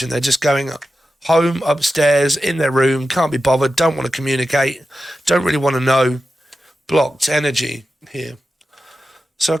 They're just going home, upstairs, in their room, can't be bothered, don't want to communicate, don't really want to know. Blocked energy here. So I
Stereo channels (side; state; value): both; normal; correlation 0.92